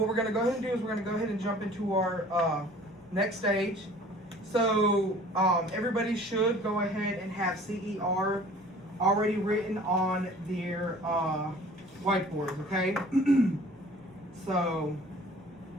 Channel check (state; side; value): normal; both; correlation 0.49